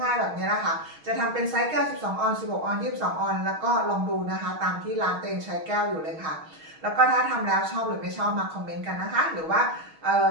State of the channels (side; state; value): left; late; 6.3 ms